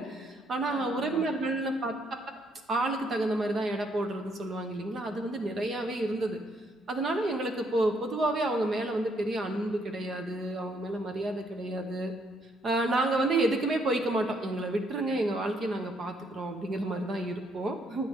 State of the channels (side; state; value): both; normal; correlation 0.71